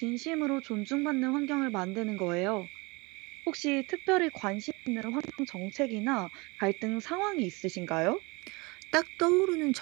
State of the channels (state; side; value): quieter; left; 26.5 dB